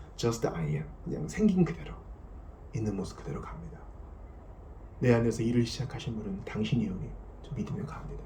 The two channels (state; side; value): identical; both; correlation 1.00